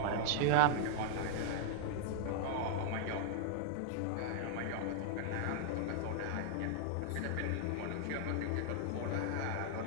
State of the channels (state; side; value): different; both; correlation -0.01